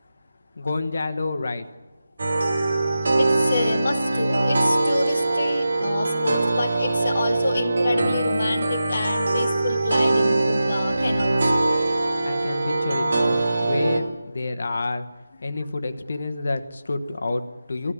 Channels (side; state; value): both; inverted; correlation -0.91